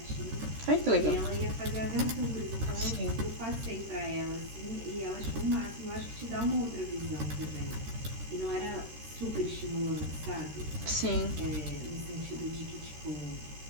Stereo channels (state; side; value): late; left; 13 ms